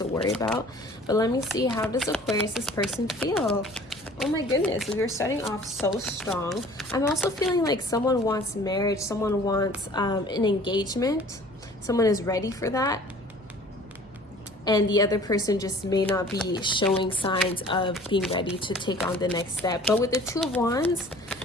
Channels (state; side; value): normal; both; correlation 0.49